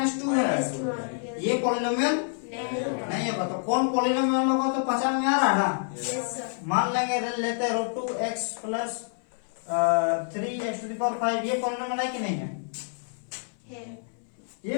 है, ये पॉलिनोमियल नहीं होगा। तो कौन पॉलिनोमियल होगा तो पहचान में आ रहा है ना। मान लेंगे लेते हैं √2x प्लस 3x⁵, ये पॉलिनोमियल है कि नहीं है,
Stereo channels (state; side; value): silent; right; 56 dB below the other